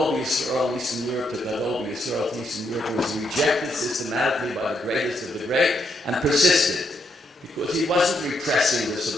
Yisrael, Eastern Europe, to Gadol Yisrael, Eastern Europe. It was rejected systematically by the greatest of the great and persisted. Because he wasn't repressing the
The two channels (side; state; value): both; normal; correlation 0.78